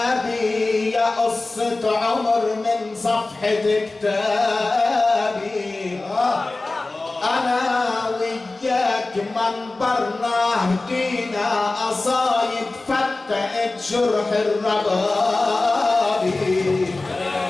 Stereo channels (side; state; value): right; quieter; 3.2 dB